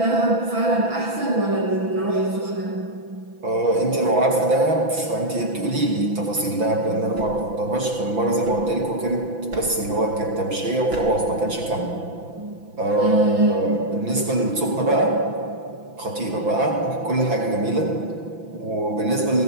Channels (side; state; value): left; late; 6.0 ms